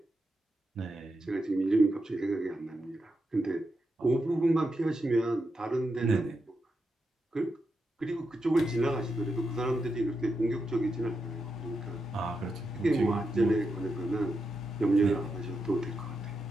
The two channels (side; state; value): both; normal; correlation 0.86